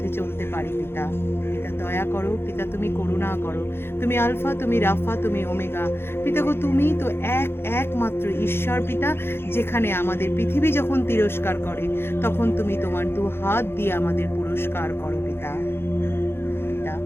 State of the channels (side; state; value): right; late; 0.11 ms